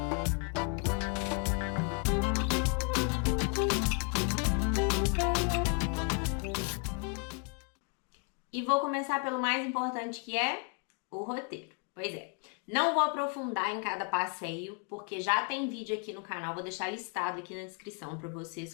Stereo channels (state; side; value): quieter; right; 36.6 dB